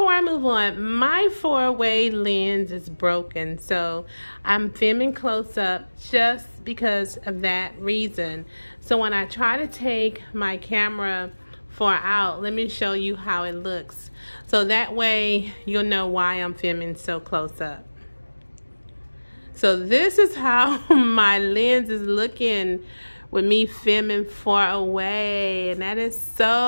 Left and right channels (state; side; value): inverted; both; correlation -1.00